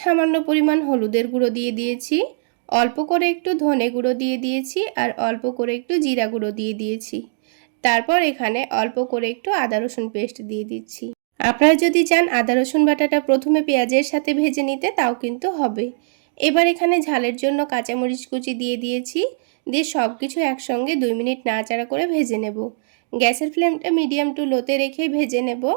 সামান্য পরিমাণ হলুদের গুঁড়ো দিয়ে দিয়েছি, অল্প করে একটু ধনে গুঁড়ো দিয়ে দিয়েছি, আর অল্প করে একটু জিরা গুঁড়ো দিয়ে দিয়েছি। তারপর এখানে অল্প করে একটু আদা রসুন পেস্ট দিয়ে দিচ্ছি। আপনারা যদি চান আদা রসুন বাটাটা প্রথমে পেঁয়াজের সাথে ভেজে নিতে তাও কিন্তু হবে। এবার এখানে ঝালের জন্য কাঁচামরিচ কুচি দিয়ে দিয়েছি, দিয়ে সব কিছু একসঙ্গে 2 মিনিট নাড়াচাড়া করে ভেজে নেব। গ্যাসের ফ্লেমটা মিডিয়াম টু লোতে রেখে ভেজে নেব।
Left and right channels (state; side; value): silent; left; digital silence